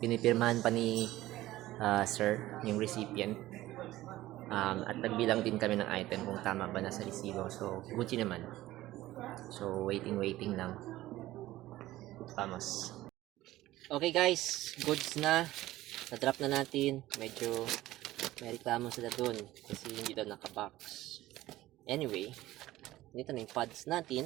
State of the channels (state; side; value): quieter; left; 16.1 dB